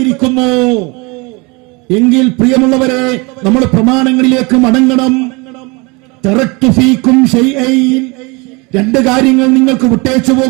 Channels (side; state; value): left; quieter; 27.4 dB